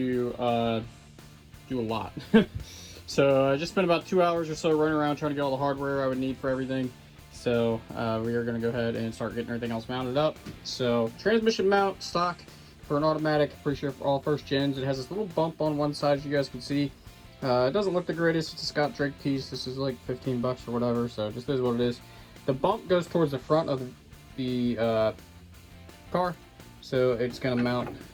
do a lot. So I just spent about 2 hours or so running around trying to get all the hardware I would need for everything. So we are going to go ahead and start getting everything else mounted up. So transmission mount, stock for an automatic, pretty sure for all first gens. It has this little bump on one side, as you guys can see. It doesn't look the greatest. It's a Scott Drake piece. This is like 15 bucks or whatever, so it just is what it is. The bump goes towards the front of the car, so it's going to mount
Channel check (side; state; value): both; identical; correlation 1.00